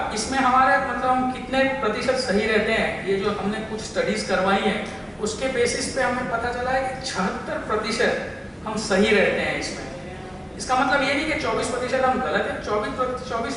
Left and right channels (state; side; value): identical; both; correlation 1.00